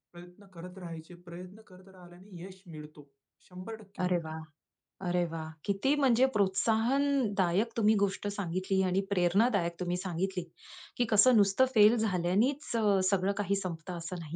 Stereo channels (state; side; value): identical; both; correlation 1.00